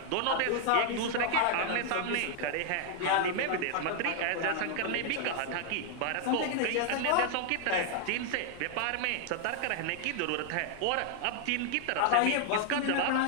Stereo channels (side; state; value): both; different; correlation 0.00